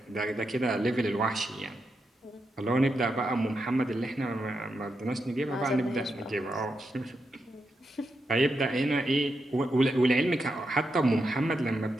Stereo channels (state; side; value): normal; both; correlation 0.85